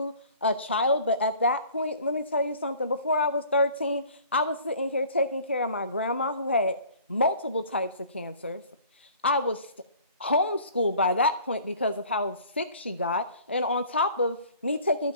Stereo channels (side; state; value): both; inverted; correlation -0.50